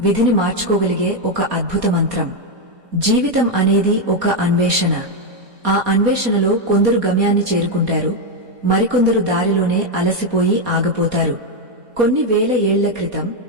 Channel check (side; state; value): left; late; 4.2 ms